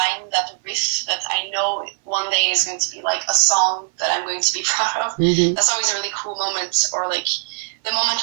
that riff that I know one day is going to be like a song that I'm going to be proud of. That's always a really cool moment, or like the moment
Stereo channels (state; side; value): silent; left; 59 dB below the other